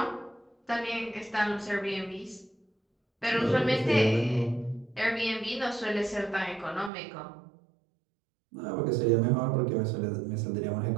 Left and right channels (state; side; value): drops out; left; at 6.9 s